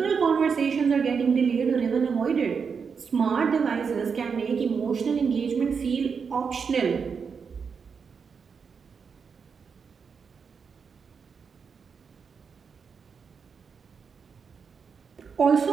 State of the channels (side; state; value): left; quieter; 5.9 dB